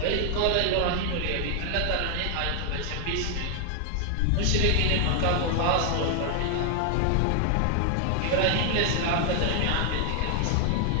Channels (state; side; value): different; both; correlation 0.00